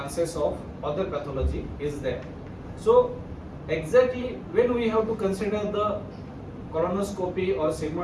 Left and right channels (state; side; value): identical; both; correlation 1.00